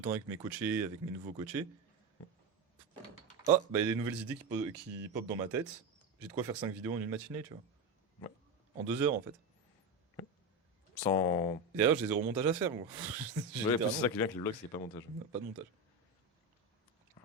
avec mes coachés, avec mes nouveaux coachés. Ah, bah il y a des nouvelles idées qui pop dans ma tête. J'ai de quoi faire 5 vidéos en une matinée, tu vois. Ouais. En 2 heures en fait. Sans. Et d'ailleurs, j'ai zéro montage à faire, moi. J'ai Ouais, littéralement c'est ça qui vient avec les vlogs, c'est pas montage. pas de montage.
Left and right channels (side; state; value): left; quieter; 3.1 dB